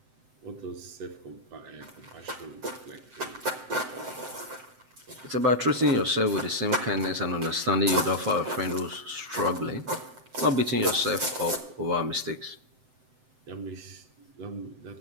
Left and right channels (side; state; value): left; late; 7.8 ms